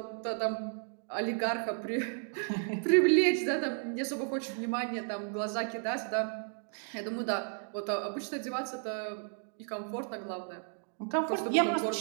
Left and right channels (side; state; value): left; silent; 56 dB below the other